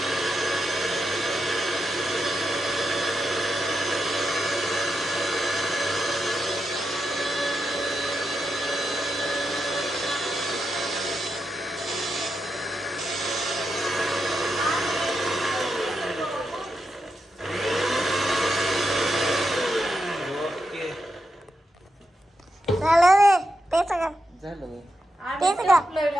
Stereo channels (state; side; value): normal; both; correlation 0.86